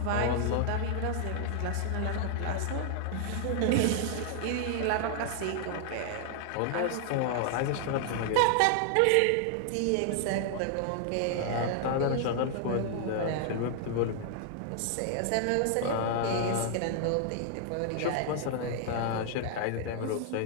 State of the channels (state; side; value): different; both; correlation 0.00